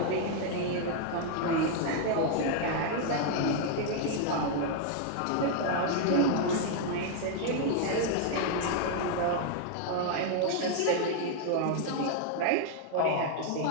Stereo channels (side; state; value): both; different; correlation 0.00